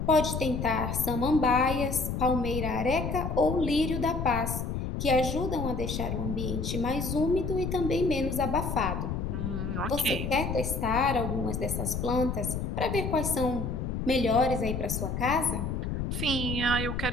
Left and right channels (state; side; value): noise; left; rumble, 3 dB below the sound